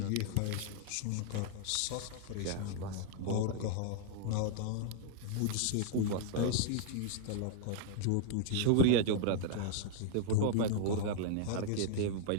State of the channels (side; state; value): both; different; correlation -0.01